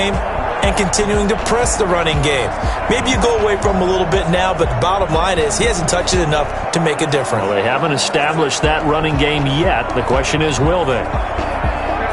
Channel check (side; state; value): both; identical; correlation 1.00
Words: and continuing to press the running game. Maybe you go away from him a little bit now, but the bottom line is he hasn't touched it enough to make a difference. Well, they haven't established that running game yet. The question is, will they?